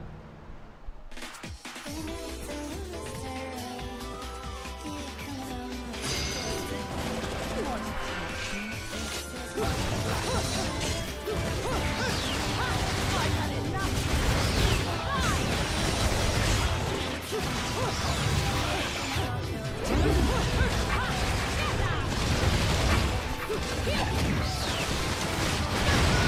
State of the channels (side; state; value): both; identical; correlation 1.00